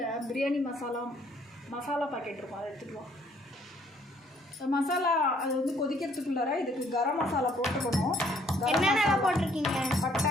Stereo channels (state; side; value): normal; both; correlation 0.63